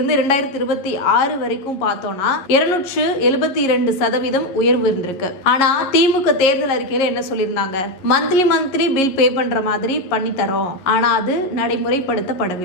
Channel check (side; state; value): right; late; 11 ms